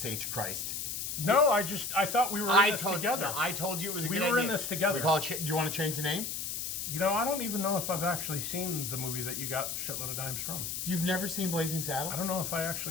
H. Christ. No, I thought we were in this together. No, I told you it was a good idea. We were in this together. We call it do you want to change the name? You know, I don't even know if I've actually seen the movie that you got Shitload of Dimes from. You've never seen Blazing Saddles? I don't know if I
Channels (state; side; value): noise; left; hiss, 4 dB below the sound